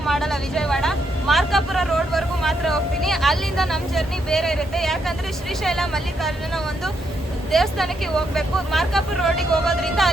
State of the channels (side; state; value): both; normal; correlation 0.78